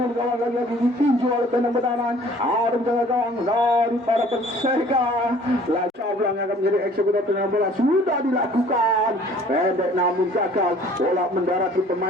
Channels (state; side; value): normal; both; correlation 0.53